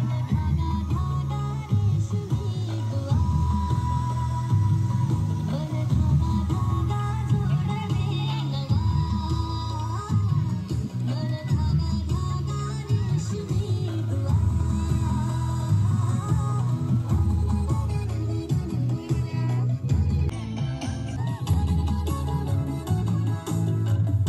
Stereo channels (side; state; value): both; identical; correlation 1.00